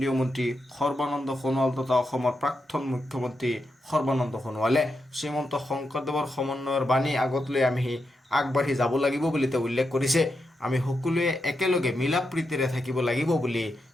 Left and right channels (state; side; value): normal; both; correlation 0.86